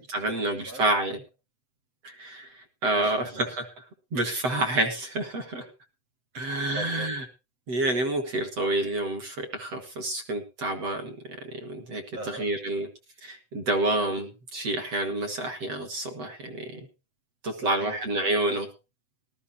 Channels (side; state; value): left; late; 7.9 ms